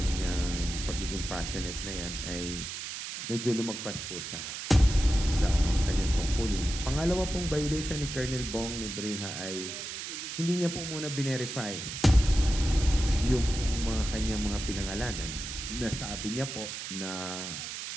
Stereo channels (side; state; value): right; noise; hiss, 7 dB below the sound